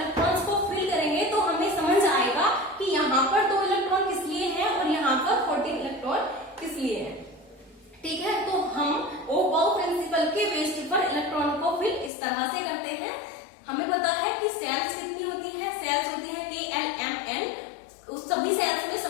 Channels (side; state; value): right; drops out; at 12.1 s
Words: को फिल करेंगे तो हमें समझ आएगा कि यहाँ पर 2 इलेक्ट्रॉन किस लिए है और यहाँ पर 14 इलेक्ट्रॉन किस लिए है। ठीक है, तो हम ओबाउ प्रिंसिपल के बेस पर इलेक्ट्रॉन को फिल इस तरह से करते हैं। हमें पता है कि सेल्स कितनी होती है, सेल्स होती है KLMN, उस सभी सेल्स में